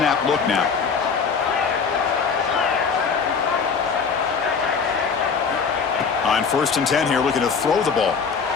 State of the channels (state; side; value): quieter; right; 5.7 dB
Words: look now. On 1st and 10 here, looking to throw the ball.